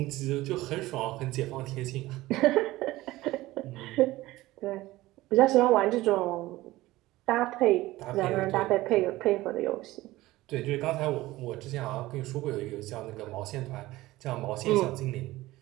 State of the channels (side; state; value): left; quieter; 17.8 dB